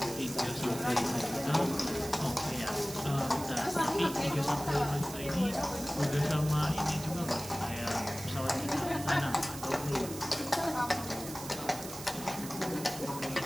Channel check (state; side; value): noise; right; hiss, 11 dB below the sound